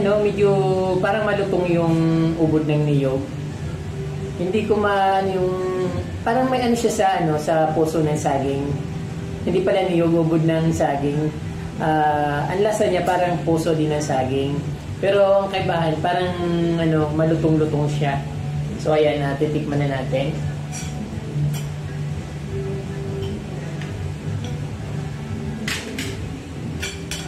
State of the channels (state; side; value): identical; both; correlation 1.00